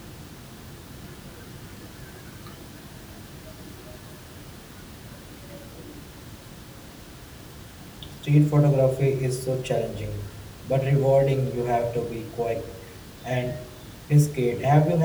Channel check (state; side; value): identical; both; correlation 1.00